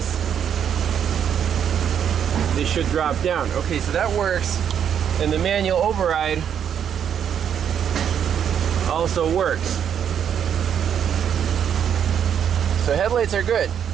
they should drop down. Okay, so that works, and the manual override also works. So headlights are good.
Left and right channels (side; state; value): left; quieter; 8.6 dB